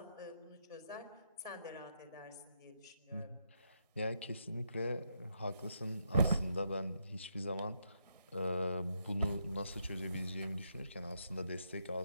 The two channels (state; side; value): inverted; both; correlation -0.79